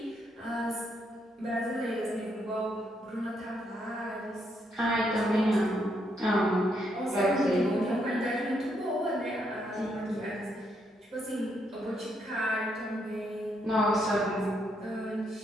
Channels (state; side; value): normal; both; correlation 0.76